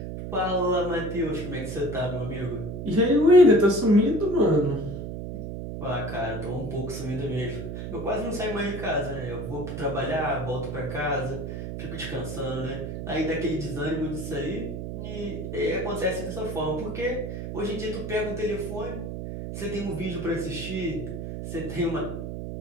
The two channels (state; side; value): noise; right; hum, 6 dB below the sound